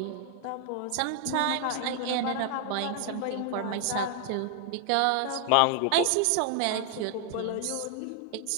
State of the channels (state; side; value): different; both; correlation 0.00